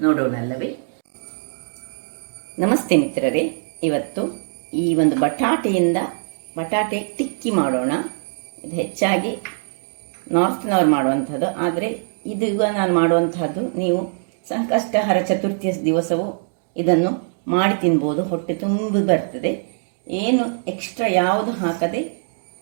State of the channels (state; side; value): silent; left; digital silence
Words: ನೋಡೋಣಲ್ಲವೇ? ನಮಸ್ತೆ ಮಿತ್ರರೇ, ಇವತ್ತು ಈ ಒಂದು ಬಟಾಟೆ ಟಿಕ್ಕಿ ಮಾಡೋಣ. ಇದು ಹೆಚ್ಚಾಗಿ ನಾರ್ತ್ನವ್ರು ಮಾಡುವಂಥದ್ದು, ಆದರೆ ಇದು ಈಗ ನಾನು ಮಾಡುವಂತಹದ್ದು ನೀವು ಸಂಕಷ್ಟಹರ ಚತುರ್ಥಿಯ ದಿವಸವೂ ಇದನ್ನು ಮಾಡಿ ತಿನ್ಬೋದು. ಹೊಟ್ಟೆ ತುಂಬ ಬರ್ತದೆ. ಏನು ಎಕ್ಸ್ಟ್ರಾ ಯಾವುದು ಹಾಕದೆ,